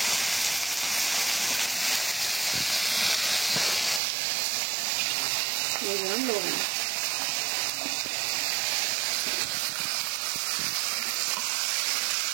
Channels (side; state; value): left; drops out; at 4.0 s